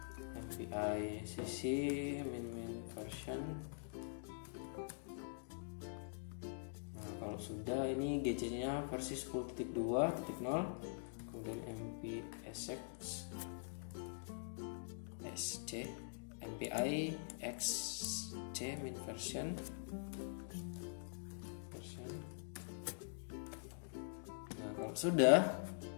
MPI CC min version. Nah, kalau sudah, ini GC-nya versi 10.2.0, kemudian MPSX SC MPI XC min version. Nah, kalau sudah,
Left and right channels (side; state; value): right; silent; digital silence